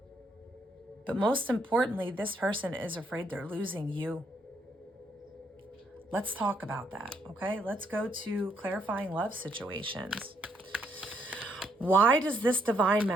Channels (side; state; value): both; normal; correlation 0.73